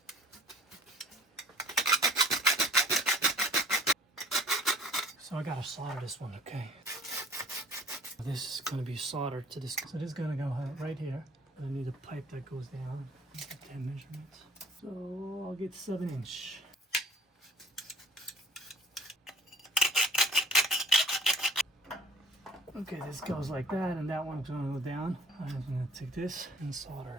So I gotta solder this one, okay? This is gonna be soldered to this. So this is gonna go right here. I need a pipe that goes down. Get that measurement. So I'll get 7-inch. Okay, this goes like that, and that one's gonna go down. I'm gonna take this and solder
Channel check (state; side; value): normal; both; correlation 0.50